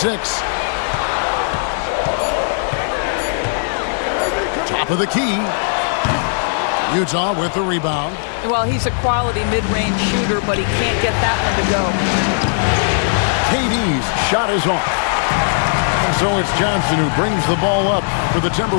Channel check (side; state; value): right; silent; digital silence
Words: Top of the key. Utah with the rebound. Well, he's a quality mid-range shooter, but he can't get that one to go. KD's shot is off. And so it's Johnson who brings the ball up for the